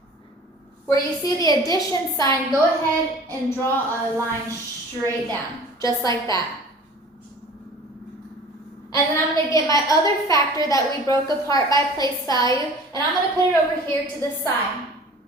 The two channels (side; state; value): both; normal; correlation 0.44